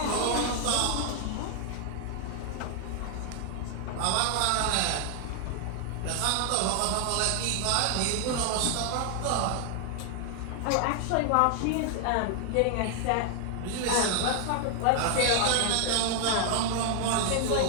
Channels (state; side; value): different; both; correlation 0.00